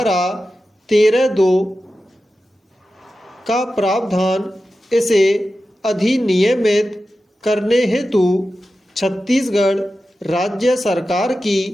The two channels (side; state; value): both; normal; correlation 0.93